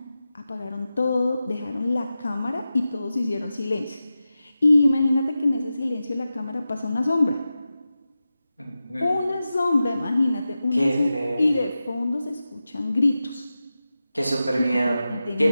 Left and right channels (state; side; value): inverted; both; correlation -0.93